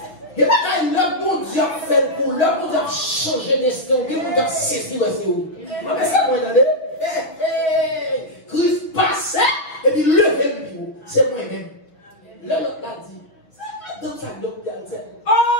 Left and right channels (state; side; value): late; right; 6.0 ms